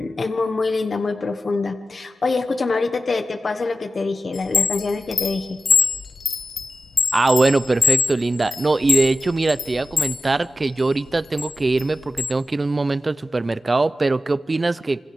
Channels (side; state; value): both; normal; correlation 0.91